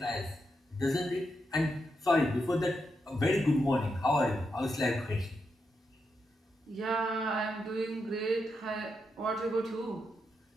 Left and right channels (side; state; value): both; normal; correlation 0.84